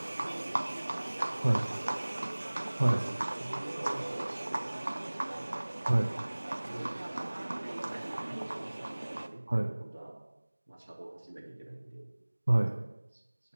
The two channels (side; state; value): both; inverted; correlation -1.00